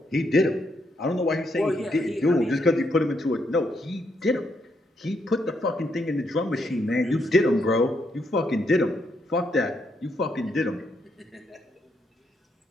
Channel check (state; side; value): normal; both; correlation 0.77